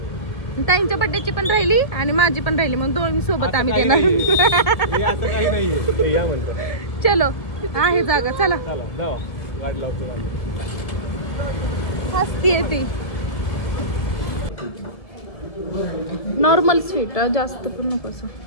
ताईंच्या बड्डेची पण राहिली आणि माझी पण राहिली म्हणून दोन्ही सोबत आम्ही देणार. असं काही नाहीये या म्हणतो. चलो आहे जागा चला. चला जावा गाडी लावतो. हसतीये ती. नॉर्मल स्वीट जास्त पण नको असं.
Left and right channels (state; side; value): late; right; 1.7 ms